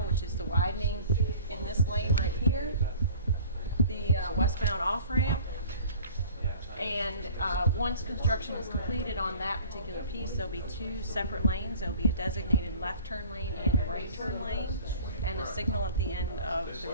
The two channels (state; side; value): inverted; both; correlation -0.46